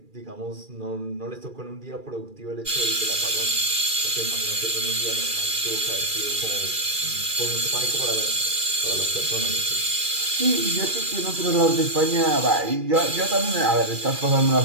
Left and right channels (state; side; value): late; left; 2.4 ms